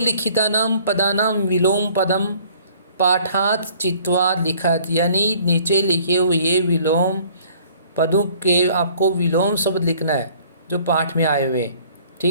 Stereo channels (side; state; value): both; inverted; correlation -0.56